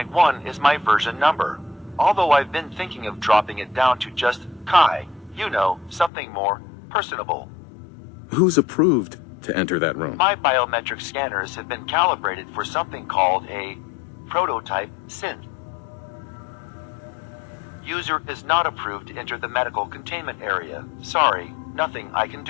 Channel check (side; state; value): right; drops out; at 6.1 s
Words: is my version number. Although I've been thinking of dropping it down to just Kai, you know, something more personable. Who's approved to enter that room? My biometric scanners have been calibrated for something called a prototype synth. User is not approved to enter the medical containment area. Sorry, nothing I can